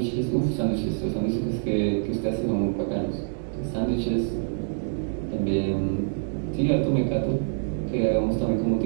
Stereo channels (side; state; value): left; silent; 61 dB below the other